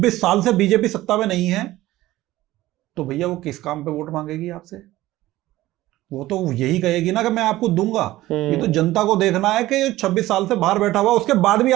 साल से बीजेपी सत्ता में नहीं है, तो भैया वो किस काम पे वोट मांगेगी आपसे? वो तो यही कहेगी ना कि मैं आपको दूंगा। ये तो जनता को देखना है कि 26 साल से बाहर बैठा हुआ, उसके बाद भी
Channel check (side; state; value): left; quieter; 16.5 dB